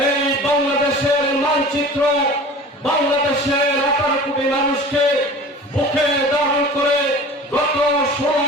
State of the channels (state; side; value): normal; both; correlation 0.40